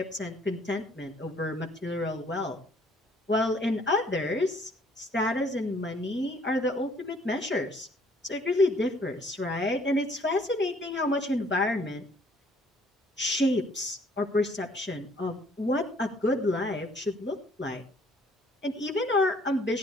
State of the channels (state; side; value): normal; both; correlation 0.60